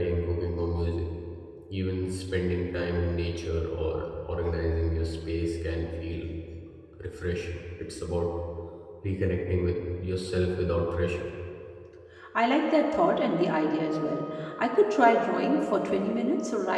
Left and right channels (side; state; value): both; identical; correlation 1.00